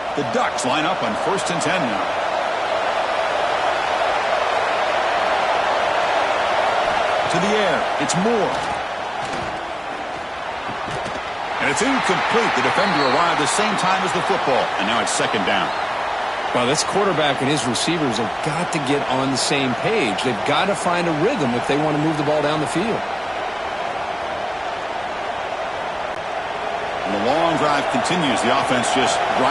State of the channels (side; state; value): both; identical; correlation 1.00